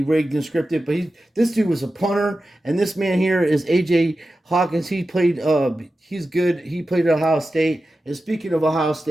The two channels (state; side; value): normal; both; correlation 0.93